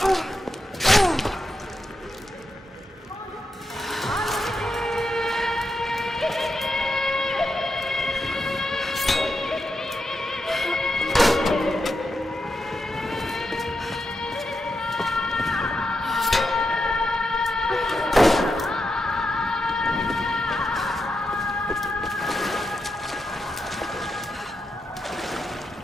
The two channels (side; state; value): both; normal; correlation 0.86